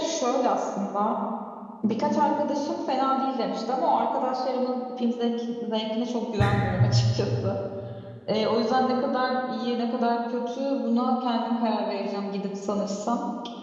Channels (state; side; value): identical; both; correlation 1.00